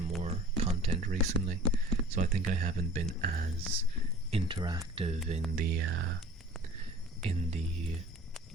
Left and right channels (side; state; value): both; normal; correlation 0.45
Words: content recently, so I think I haven't been as interactive in the